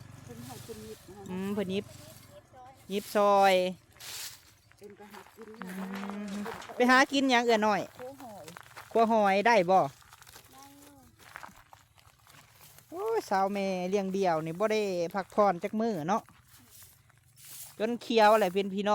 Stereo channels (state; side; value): identical; both; correlation 1.00